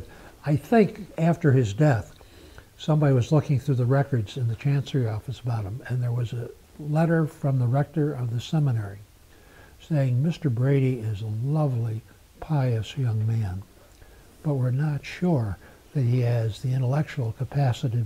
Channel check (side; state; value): both; identical; correlation 1.00